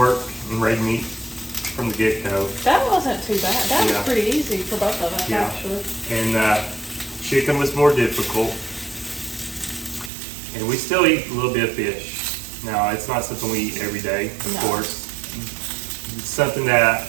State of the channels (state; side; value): drops out; left; at 10.1 s